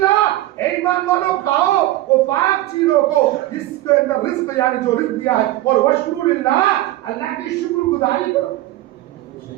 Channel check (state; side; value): quieter; left; 16.0 dB